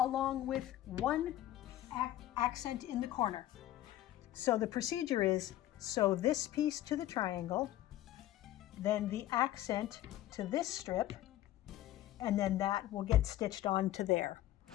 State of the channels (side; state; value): right; quieter; 14.0 dB